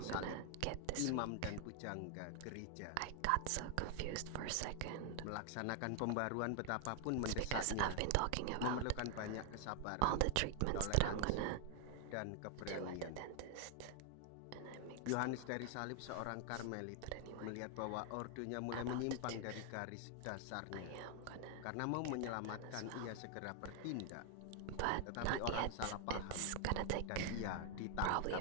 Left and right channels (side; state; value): both; different; correlation 0.00